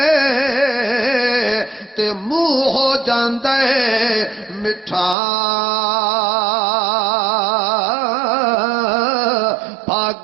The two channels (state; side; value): drops out; left; at 5.2 s